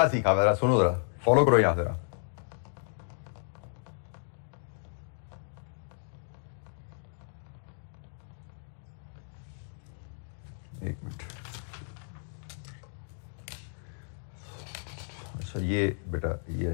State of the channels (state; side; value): silent; right; digital silence